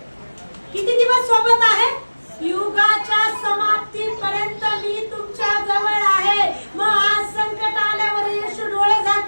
किती दिवस सोबत आहे? युगाच्या समाप्तीपर्यंत मी तुमच्या जवळ आहे. मग आज संकट आल्यावर येशू डोळे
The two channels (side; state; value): both; inverted; correlation -1.00